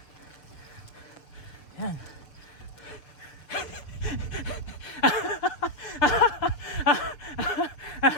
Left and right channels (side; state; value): right; late; 6.6 ms